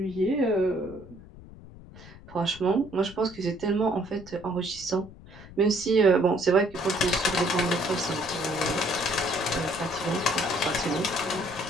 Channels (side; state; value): left; noise; rumble, 18 dB below the sound